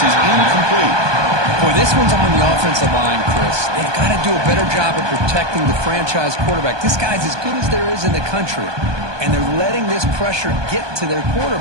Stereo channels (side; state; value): left; late; 1.2 ms